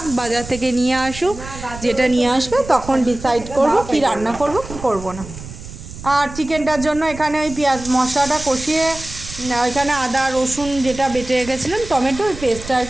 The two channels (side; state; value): right; noise; rumble, 13 dB below the sound